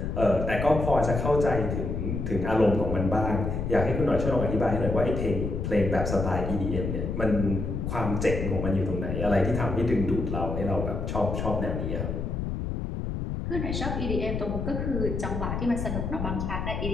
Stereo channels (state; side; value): noise; left; rumble, 3 dB below the sound